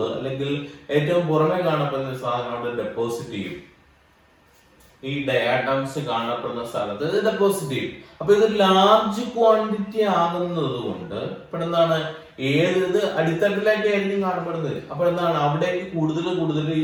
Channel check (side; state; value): both; identical; correlation 1.00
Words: അല്ലെങ്കിൽ ഏറ്റവും പുറമെ കാണപ്പെടുന്ന സാധനം അവിടെ ഡെപ്പോസിറ്റ് ചെയ്യും. ഈ ഡയാറ്റംസ് കാണപ്പെടുന്ന സ്ഥലത്ത് ഇത് ഡെപ്പോസിറ്റ് ചെയ്യും. അപ്പൊ ഇത് ലാർജ് ക്വാണ്ടിറ്റി ആകുന്നത് കൊണ്ട് ഇപ്പോൾ എന്താണ്, ഏത് അടിത്തട്ടിലേക്ക് ആയിരിക്കും കാണപ്പെടുന്നത്. അപ്പൊ എന്താണ്, അവിടേക്ക് കൂടുതൽ